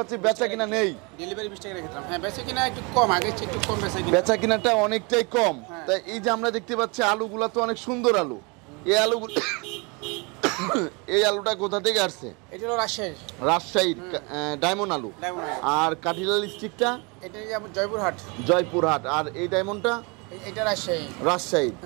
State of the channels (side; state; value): left; quieter; 30.0 dB